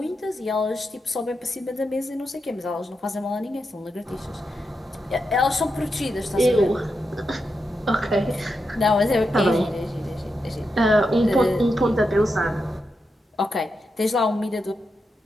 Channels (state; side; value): normal; both; correlation 0.86